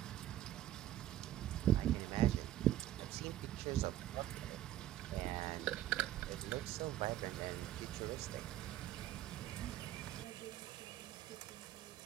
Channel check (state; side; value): quieter; left; 13.1 dB